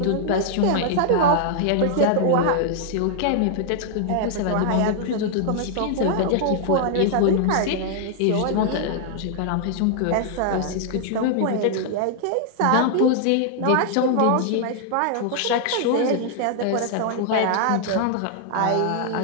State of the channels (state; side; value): different; both; correlation -0.01